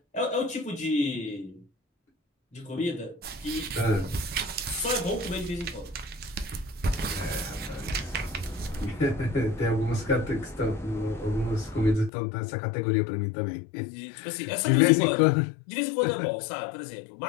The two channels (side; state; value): right; drops out; at 12.1 s